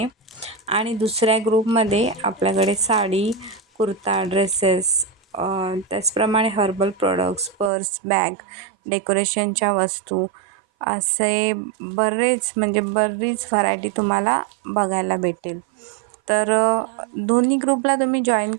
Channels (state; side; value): drops out; left; at 7.7 s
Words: आणि दुसऱ्या ग्रुपमध्ये आपल्याकडे साडी, कुर्ता, ड्रेसेस, त्याचप्रमाणे हर्बल प्रॉडक्ट्स, पर्स, बॅग, डेकोरेशनच्या वस्तू असे बरीच व्हरायटी तुम्हाला बघायला भेटेल. तर दोन्ही ग्रुपला तुम्ही जॉईन